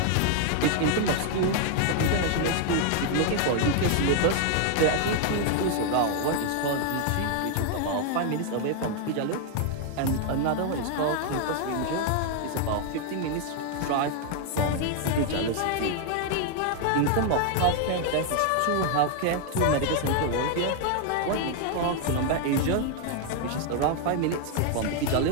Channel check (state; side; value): different; both; correlation 0.00